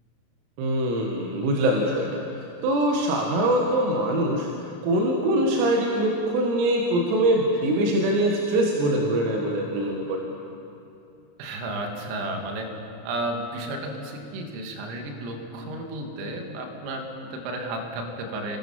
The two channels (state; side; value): late; left; 34 ms